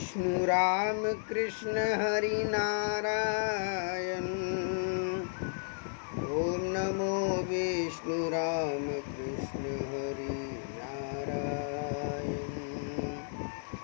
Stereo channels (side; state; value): right; silent; 56 dB below the other